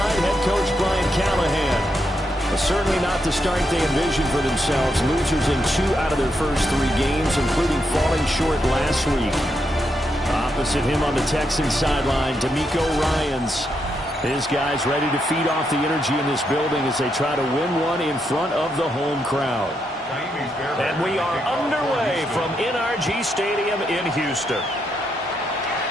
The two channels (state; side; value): normal; both; correlation 0.81